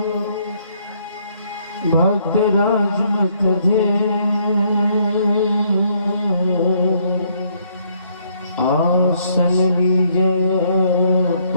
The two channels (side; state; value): both; inverted; correlation -0.69